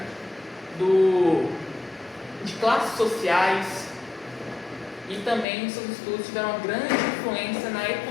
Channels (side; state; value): right; drops out; at 5.5 s